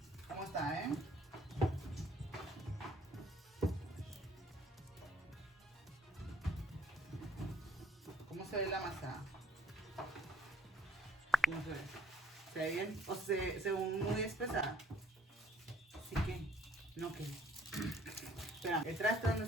¿Cómo está, eh? ¿Cómo se ve la masa? ¿Cómo se ve? ¿Se ve bien? ¿O se ve muy espesa? Sí que. No que. Espera, ¿el traste dónde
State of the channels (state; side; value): normal; both; correlation 0.60